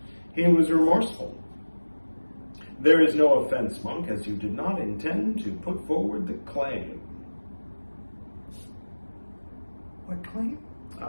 He was remorseful. "There is no offense, monk, as you did not intend to put forward the claim." What claim?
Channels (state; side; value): inverted; both; correlation -1.00